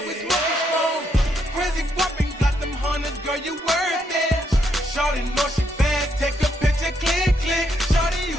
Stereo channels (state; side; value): normal; both; correlation 0.76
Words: is smoking strong. Crazy whopping, got them hunters, girl, you worth it. Shorty know she bad, take a picture, click. Shorty,